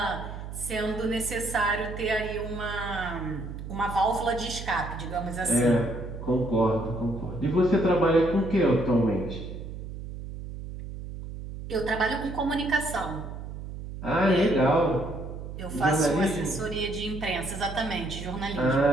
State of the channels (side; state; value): right; noise; hum, 9 dB below the sound